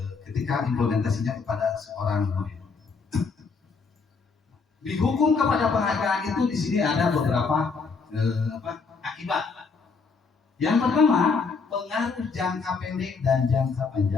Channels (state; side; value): quieter; right; 4.8 dB